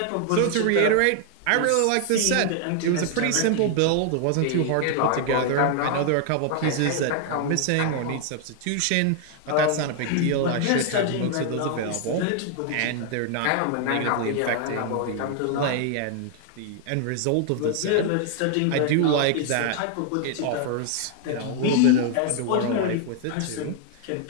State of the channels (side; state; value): both; different; correlation 0.00